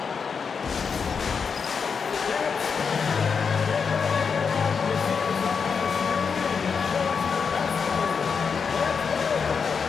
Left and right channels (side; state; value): right; quieter; 5.9 dB